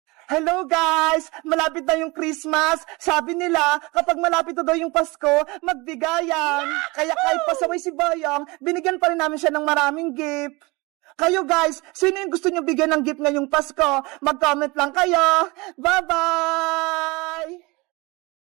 Hello guys! Malapit na yung Christmas. Sabi nila, kapag malapit na daw yung Pasko, magbigayan. Kaya kahit pasaway si Boyong, binigyan pa rin namin siya ng maraming gift. Kayo guys, sino yung gusto nyo bigyan ng gift ngayong Pasko? Mag-comment lang kayo. Bye-bye!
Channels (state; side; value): quieter; left; 24.7 dB